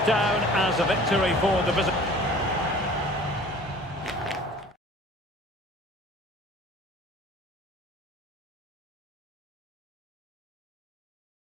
down as a victory for the visitors.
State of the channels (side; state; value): both; normal; correlation 0.47